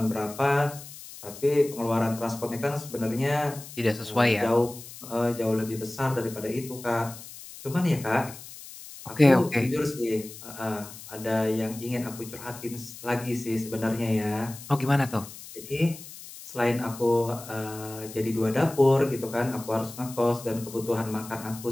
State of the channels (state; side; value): noise; left; hiss, 15 dB below the sound